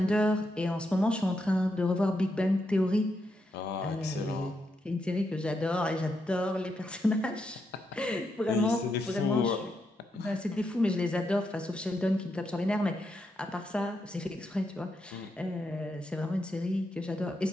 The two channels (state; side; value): normal; both; correlation 0.82